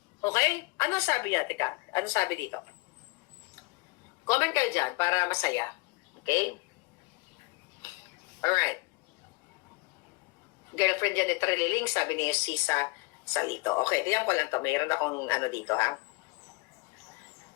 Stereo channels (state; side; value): quieter; right; 27.1 dB